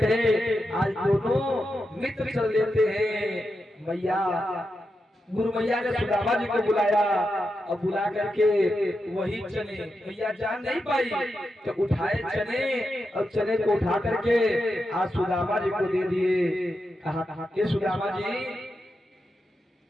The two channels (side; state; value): both; normal; correlation 0.87